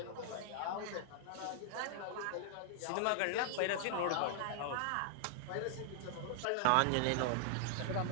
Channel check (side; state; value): both; different; correlation -0.01